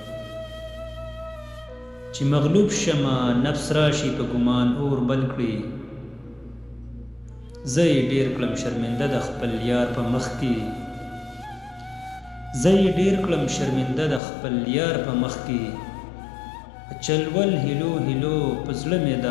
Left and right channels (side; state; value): right; drops out; at 14.2 s